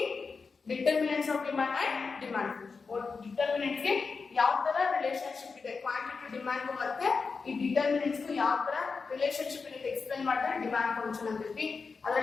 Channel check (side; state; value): right; quieter; 4.8 dB